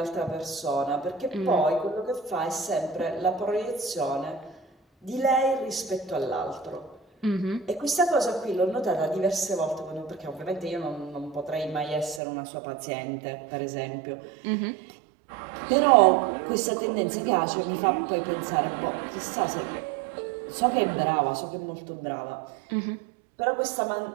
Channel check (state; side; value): drops out; left; at 12.2 s